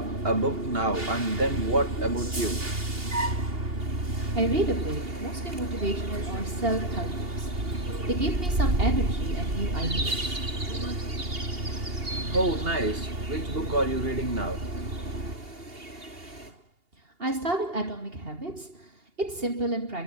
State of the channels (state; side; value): late; left; 2.8 ms